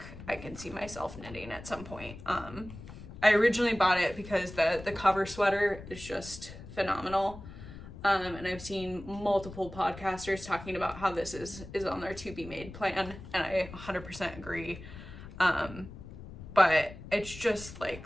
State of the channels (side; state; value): left; noise; rumble, 14 dB below the sound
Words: I can see myself knitting at some point. I originally bought it because the cover sweater is just phenomenal. And I've seen multiple podcasters talking about how this is on their to be made plan, and I 100% agree. But it's just like,